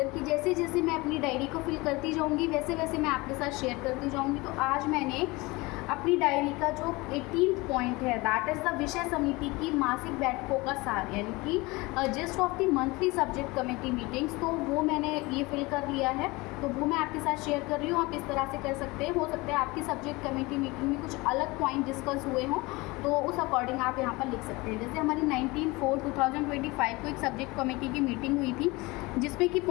कि जैसे जैसे मैं अपनी डायरी को फिल करती जाऊंगी वैसे वैसे मैं आपके साथ शेयर करती जाऊंगी। तो आज मैंने अपनी डायरी का जो 18th पॉइंट है, दैट इज़ द विषय समिति की मासिक बैठकों का सार, यानी कि gist of the monthly subject committee meetings, तो वो मैंने ये फिल कर लिया है। तो वो मैं आपके साथ शेयर कर रही हूँ। आप इस तरह से कर सकते हैं। हो सकता है आपकी सब्जेक्ट कमेटी मीटिंग में कुछ अलग पॉइंट डिस्कस हुए हों, तो उस अकॉर्डिंग आप यहाँ पर लिख सकते हैं। जैसे हमारी 19/4/2025 को एक सब्जेक्ट कमेटी की मीटिंग हुई थी, जिसमें कि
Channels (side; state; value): right; quieter; 23.3 dB